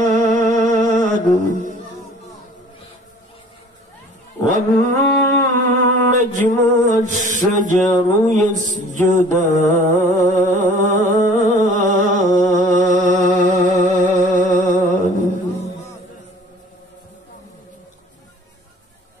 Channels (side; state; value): both; normal; correlation 0.49